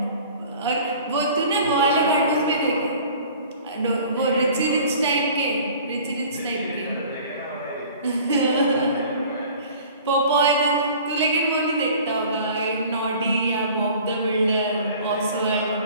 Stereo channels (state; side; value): inverted; both; correlation -0.47